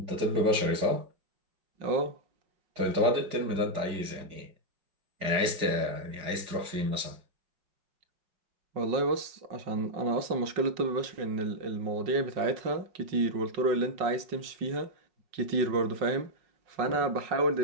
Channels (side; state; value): left; late; 4.9 ms